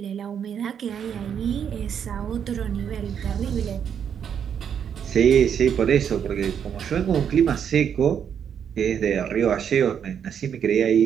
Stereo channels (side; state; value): left; quieter; 8.1 dB